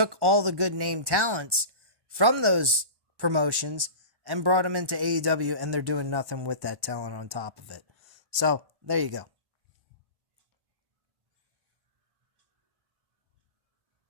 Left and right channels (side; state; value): left; late; 1.2 ms